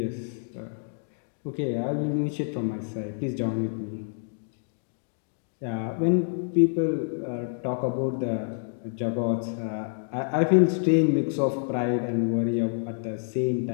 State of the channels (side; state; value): right; silent; digital silence